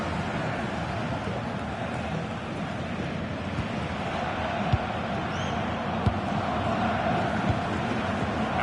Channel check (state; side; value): identical; both; correlation 1.00